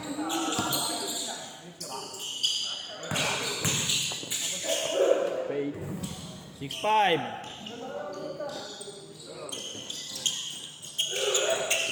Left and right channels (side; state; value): both; identical; correlation 1.00